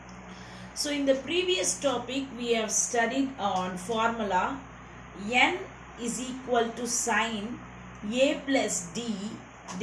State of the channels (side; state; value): both; identical; correlation 1.00